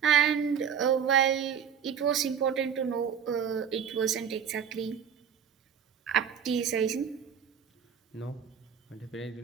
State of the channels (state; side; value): quieter; left; 7.6 dB